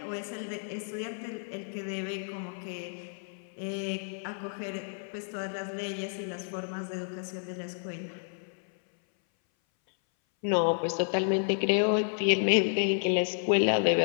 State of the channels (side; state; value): right; silent; 57 dB below the other